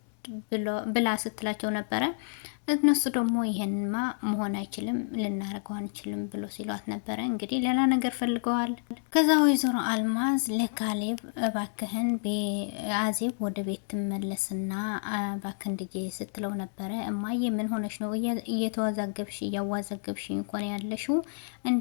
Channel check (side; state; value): right; silent; digital silence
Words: ብላ ስትላቸው ነበረ። እነሱ ደግሞ ይሄንማ መሆን አይችልም፣ ልናደርገው አንችልም ብሎ ሲሏት ነበረ። እንግዲህ ሌላ ነገር ፈልገዋል። ከዛ ወይዘሮ አልማዝ ለካሌብ እባክህን አዜብ ወደ ቤት ትመለስና እባክህን ልጄ ስትለው ነበረ። እማዬ ምን ሆነሽ ነው? እየተወዛገብሽ እያዋዘገብሽ እንኳን ያለሽው